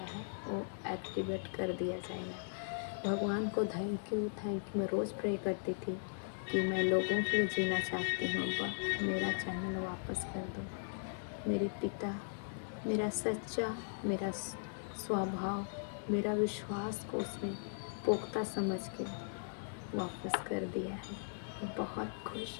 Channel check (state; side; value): silent; right; digital silence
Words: है, वो एक्टिवेट कर दिया जाएगा। भगवान को थैंक यू। मैं रोज़ प्रे करती थी कि मैं लोगों के लिए जीना चाहती हूँ। अब्बा मेरा चैनल वापस कर दो। मेरे पिता मेरा सच्चा मेरा स्वभाव मेरा विश्वास को उसने पुख्ता समझ के वापस कर दिया है। मैं बहुत खुश,